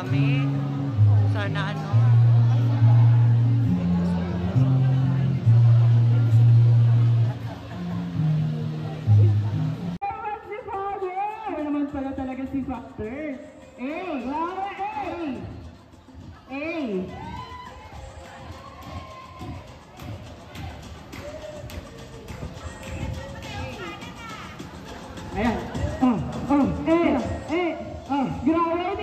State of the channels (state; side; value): identical; both; correlation 1.00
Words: dami. Sana ano. Si Father! Naman pala talaga si Factor. Wow! Ayan. Grabe,